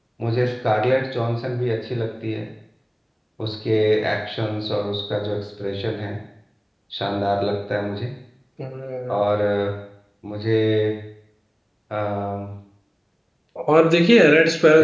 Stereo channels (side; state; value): both; identical; correlation 1.00